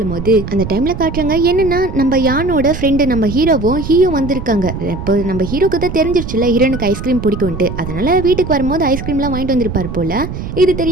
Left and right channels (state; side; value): noise; right; rumble, 7 dB below the sound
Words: போது அந்த டைமில் காட்டுறாங்க என்னென்னா நம்ம யானோட ஃப்ரெண்டு நம்ம ஹீரோவும் வந்திருக்காங்க. இப்போ நம்ம ஹீரோக்கு தான் தெரிஞ்சிருச்சுல ஹீரோனுக்கு ஐஸ்கிரீம் பிடிக்கும்ட்டு, அதனால் வீட்டுக்கு வரும்போது ஐஸ்கிரீம்லாம் வாங்கிட்டு வந்திருப்பார் போல். இது